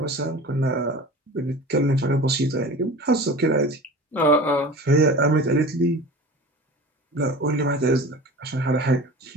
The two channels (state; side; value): normal; both; correlation 0.37